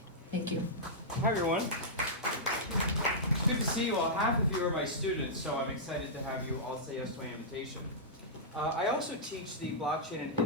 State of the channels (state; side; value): normal; both; correlation -0.13